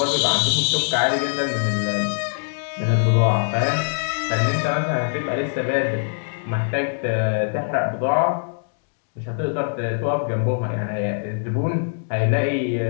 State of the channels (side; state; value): right; silent; digital silence